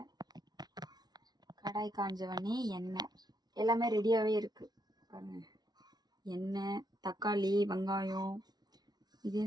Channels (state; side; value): late; left; 0.19 ms